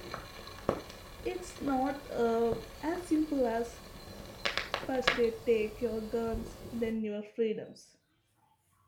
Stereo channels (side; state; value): both; identical; correlation 1.00